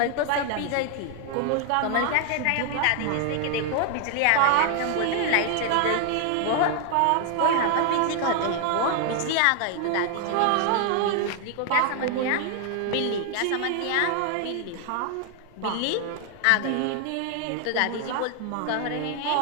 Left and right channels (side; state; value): both; different; correlation 0.00